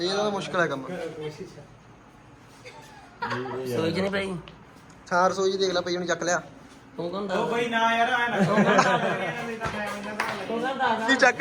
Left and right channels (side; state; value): both; identical; correlation 1.00